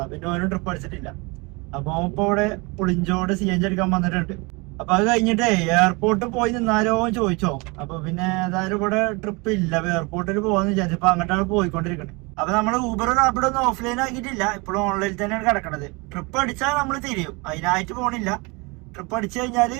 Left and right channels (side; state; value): left; quieter; 27.6 dB